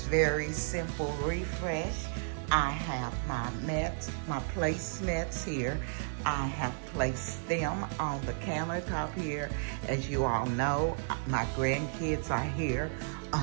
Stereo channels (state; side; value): silent; left; digital silence